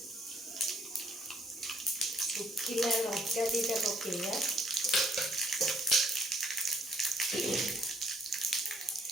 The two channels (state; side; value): normal; both; correlation 0.64